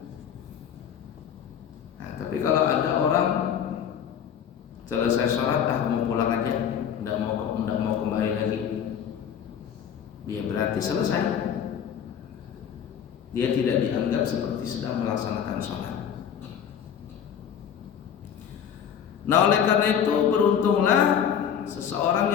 Nah, tapi kalau ada orang selesai sholat, mau pulang aja, tidak mau kembali lagi, dia berarti selesai. Dia tidak dianggap seperti sedang melaksanakan sholat. Nah, oleh karena itu beruntunglah seseorang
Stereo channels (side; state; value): right; quieter; 8.5 dB